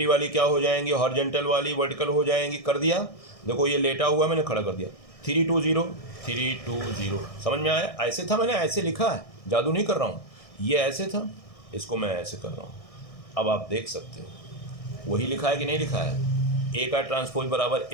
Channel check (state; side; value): late; right; 1.6 ms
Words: वाली क्या हो जाएंगी, हॉरिजॉन्टल वाली वर्टिकल हो जाएंगी, कर दिया। देखो ये लेटा हुआ मैंने खड़ा कर दिया, 3 2 0 3 2 0। समझ में आया, ऐसे था, मैंने ऐसे लिखा है, जादू नहीं कर रहा हूँ, ये ऐसे था, इसको मैं ऐसे कर रहा हूँ। अब आप देख सकते हो वही लिखा है कि नहीं लिखा है, ए का ट्रांसपोज बराबर